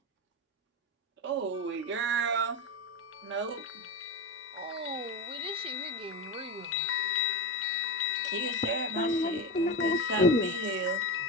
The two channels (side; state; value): both; normal; correlation 0.19